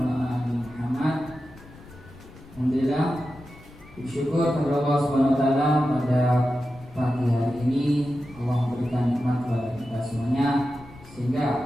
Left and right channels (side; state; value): left; noise; rumble, 21 dB below the sound